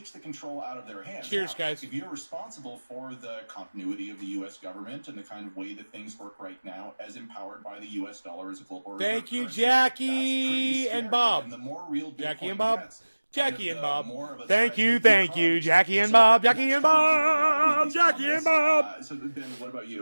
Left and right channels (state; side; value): inverted; both; correlation -1.00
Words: the contral out of their hands. Cheers, guys. If you're responsible for the continuity of the U.S. government and the kind of way that things work right now, as empowered by the U.S. dollar as a global reserve Thank you, currency, Jackie and Bob. And the more real Jackie Bitcoin and Bob. gets, Jackie and Bob. Thank you, Jackie and Bob. Jackie and Bob. Jackie and Bob. So Ben, what about